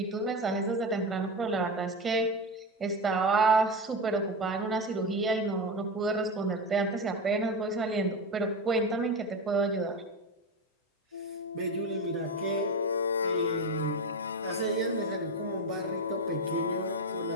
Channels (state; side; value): normal; both; correlation 0.19